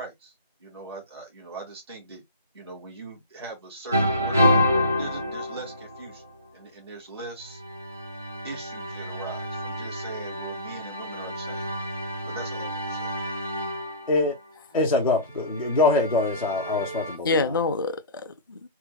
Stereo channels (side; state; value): both; inverted; correlation -0.35